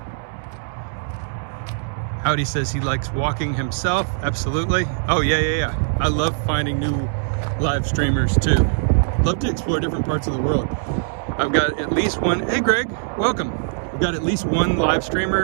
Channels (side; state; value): left; silent; 65 dB below the other